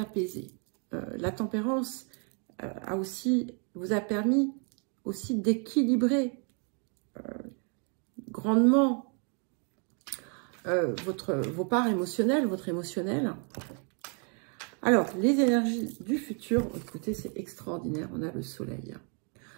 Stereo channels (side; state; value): left; quieter; 38.9 dB